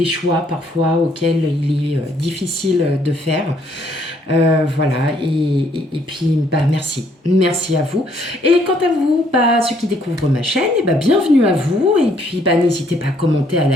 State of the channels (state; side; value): normal; both; correlation 0.67